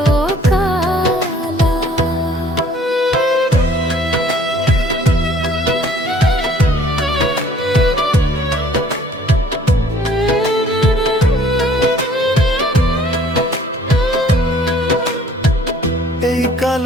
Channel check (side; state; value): both; normal; correlation 0.55